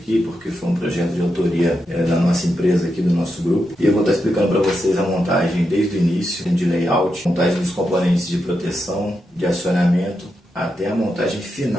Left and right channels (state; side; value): normal; both; correlation 0.86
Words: porque foi um projeto de autoria da nossa empresa aqui, do nosso grupo. E eu vou estar explicando para vocês a montagem desde o início, de layout, montagem dos componentes de proteção, de acionamento, até a montagem